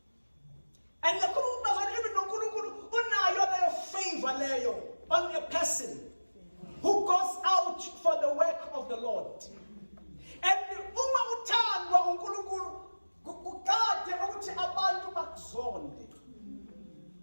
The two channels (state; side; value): inverted; both; correlation -1.00